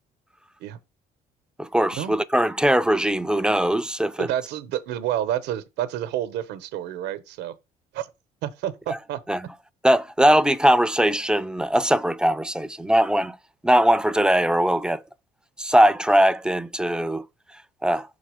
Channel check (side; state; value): both; normal; correlation 0.89